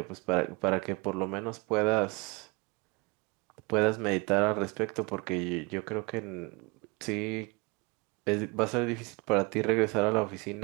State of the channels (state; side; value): quieter; left; 27.5 dB